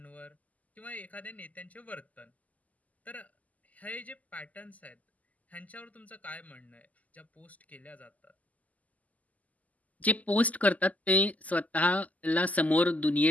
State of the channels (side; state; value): right; late; 0.076 ms